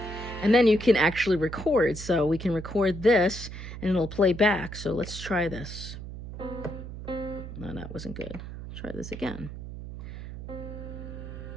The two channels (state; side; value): noise; right; hum, 10 dB below the sound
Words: And then you can actually record. So we can record this and it'll play back. So let's try this. No, that wasn't good. Try this again.